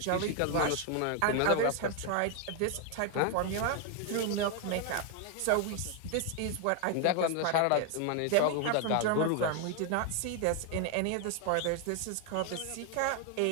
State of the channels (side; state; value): both; different; correlation 0.01